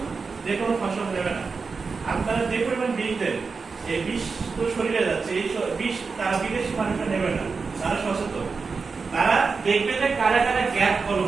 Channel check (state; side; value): quieter; left; 4.7 dB